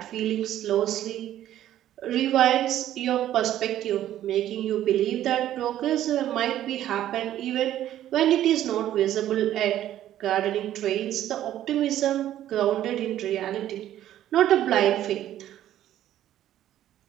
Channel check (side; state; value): left; quieter; 12.3 dB